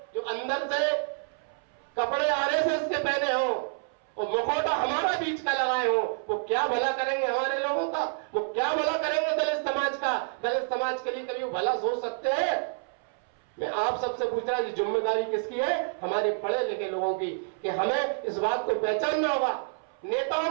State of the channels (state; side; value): silent; left; 59 dB below the other